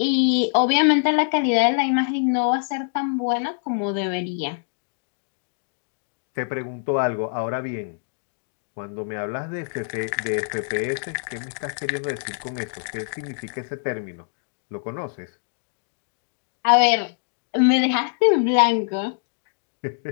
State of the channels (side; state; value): right; silent; digital silence